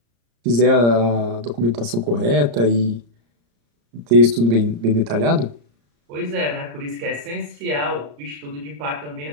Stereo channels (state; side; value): late; left; 34 ms